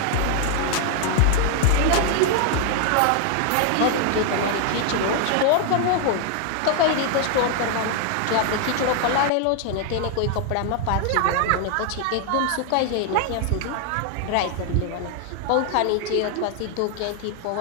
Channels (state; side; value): different; both; correlation 0.00